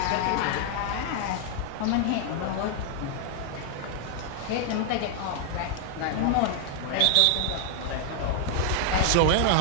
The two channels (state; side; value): different; both; correlation 0.00